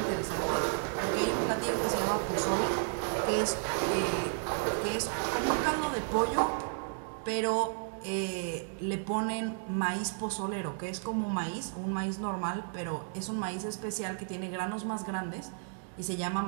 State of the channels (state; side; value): silent; left; digital silence